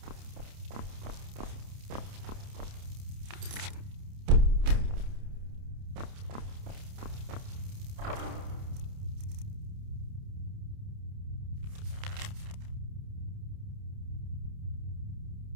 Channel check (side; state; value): left; late; 29 ms